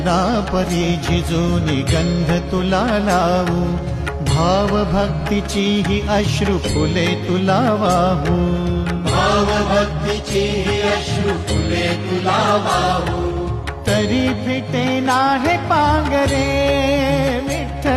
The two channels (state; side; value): identical; both; correlation 1.00